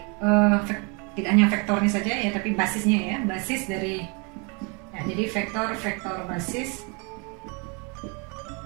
tidak hanya vektornya saja ya, tapi basisnya ya, basis dari ya, jadi vektor basis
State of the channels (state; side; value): quieter; left; 33.4 dB